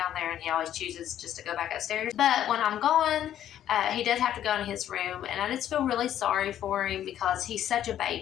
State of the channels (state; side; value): quieter; right; 11.1 dB